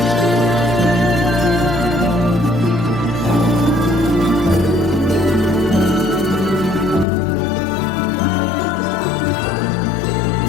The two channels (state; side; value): drops out; right; at 7.1 s